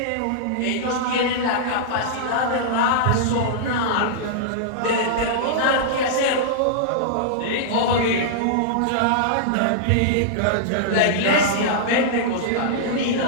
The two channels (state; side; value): different; both; correlation -0.02